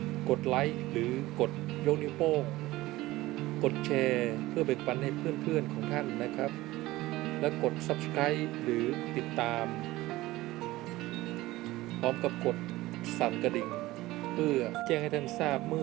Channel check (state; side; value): quieter; left; 18.1 dB